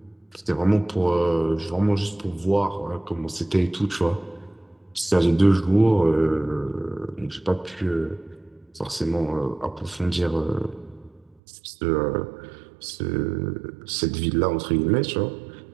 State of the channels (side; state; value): left; drops out; at 11.4 s